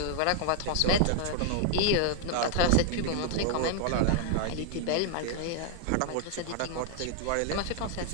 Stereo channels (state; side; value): different; both; correlation 0.00